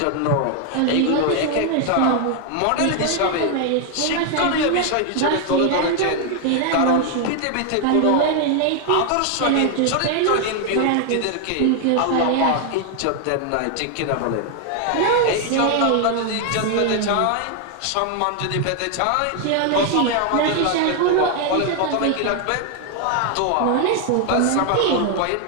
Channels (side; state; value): both; different; correlation 0.00